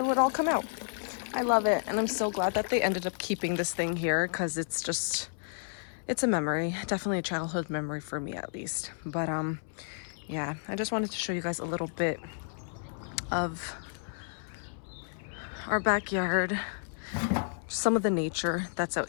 would all come out. I love it, and I'm so glad that they ended up keeping this thing here, because it's a memory, definitely a childhood memory for me at least. But yeah, I just wanted to show you guys a little bit of our backyard. Some of the nature that's out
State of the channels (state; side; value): silent; right; 57 dB below the other